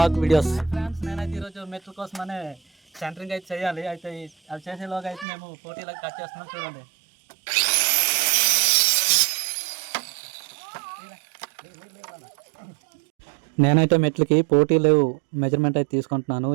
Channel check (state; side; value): drops out; left; at 5.2 s